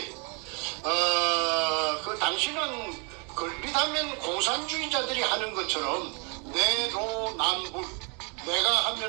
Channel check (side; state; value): left; quieter; 34.5 dB